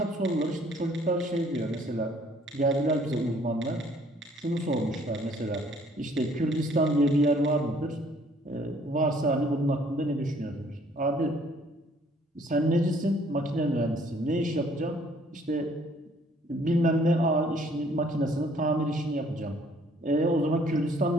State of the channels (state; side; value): normal; both; correlation 0.60